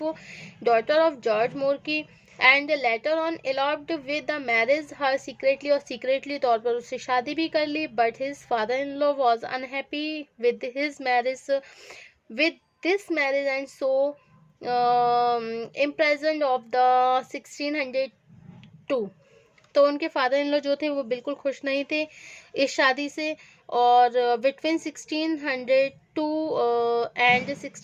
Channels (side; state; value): both; identical; correlation 1.00